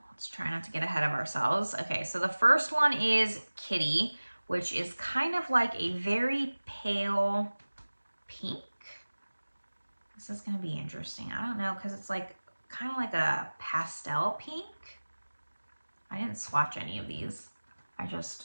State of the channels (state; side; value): inverted; both; correlation -1.00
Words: Let's try not to get ahead of ourselves. Okay, so the first one is Kitty, which is kind of like a very pale pink. This is gonna be interesting. I don't know, because it's like kind of like a pastel pink. I didn't swatch any of these. I